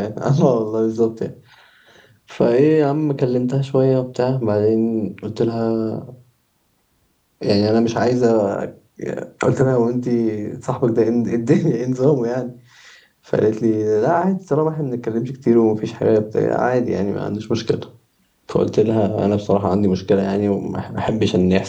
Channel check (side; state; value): both; identical; correlation 1.00